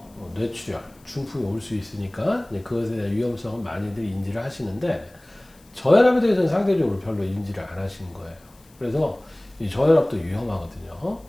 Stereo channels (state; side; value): noise; left; hiss, 29 dB below the sound